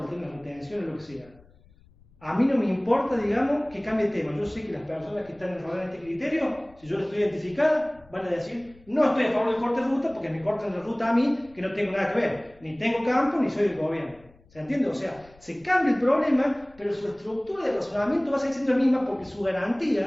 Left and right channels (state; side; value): noise; left; rumble, 27 dB below the sound